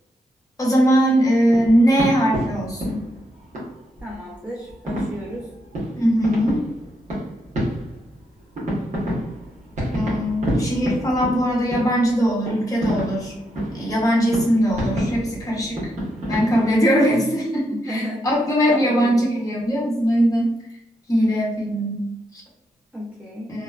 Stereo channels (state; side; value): normal; both; correlation 0.81